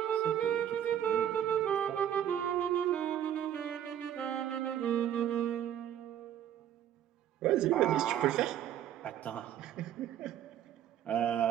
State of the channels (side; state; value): left; quieter; 10.6 dB